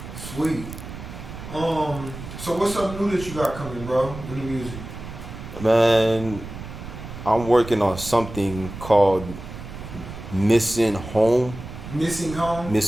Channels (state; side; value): noise; right; rumble, 11 dB below the sound